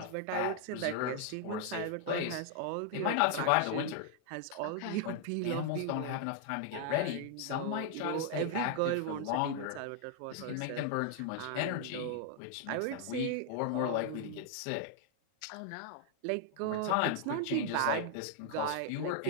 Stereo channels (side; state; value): both; different; correlation 0.00